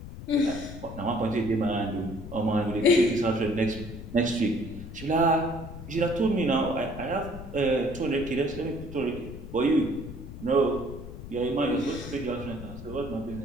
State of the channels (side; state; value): left; noise; rumble, 11 dB below the sound